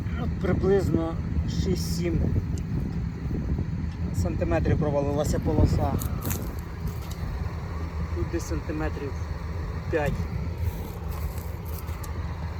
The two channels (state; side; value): identical; both; correlation 1.00